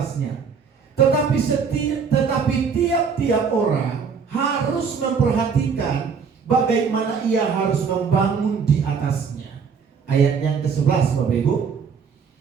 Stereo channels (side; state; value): left; quieter; 6.0 dB